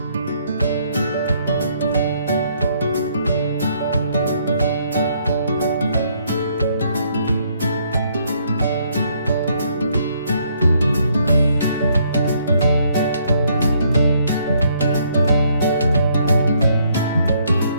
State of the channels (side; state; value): both; inverted; correlation -0.69